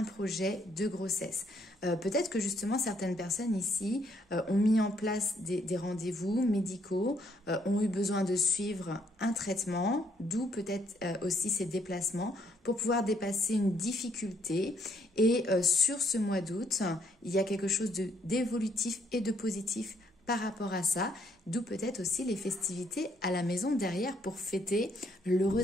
projet de grossesse. Peut-être que justement certaines personnes ici ont mis en place des rendez-vous médicaux, ont eu besoin de suivre un traitement, d'où peut-être aussi ces déplacements pour pouvoir dépasser une difficulté. Et sur ce mois d'août, il y a quelque chose d'évolutif et de positif par rapport à ça, d'où peut-être aussi les festivités à la maison derrière pour fêter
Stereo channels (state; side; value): normal; both; correlation 0.69